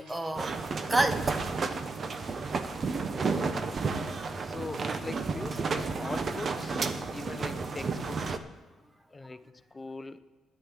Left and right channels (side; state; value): left; quieter; 3.0 dB